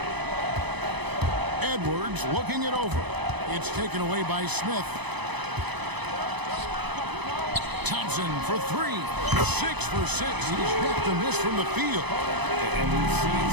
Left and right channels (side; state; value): left; late; 0.99 ms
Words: Edwards looking it over. It's taken away by Smith. Thompson for 3. 6 for 6. He's yet to miss from the field. And we've seen